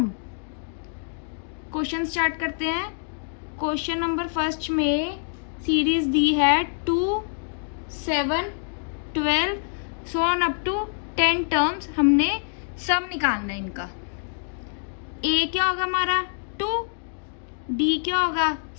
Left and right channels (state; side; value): silent; right; digital silence